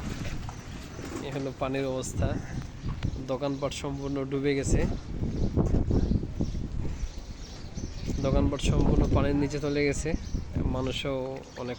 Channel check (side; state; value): both; identical; correlation 1.00